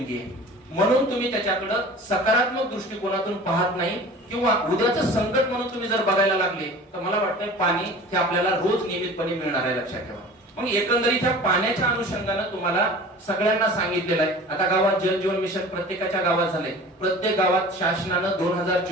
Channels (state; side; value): normal; both; correlation 0.41